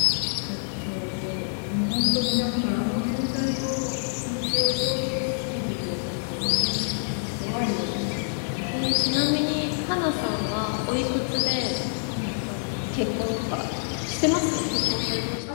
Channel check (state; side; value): silent; right; digital silence